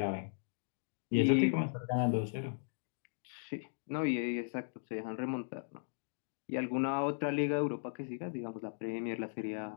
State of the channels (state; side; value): silent; right; digital silence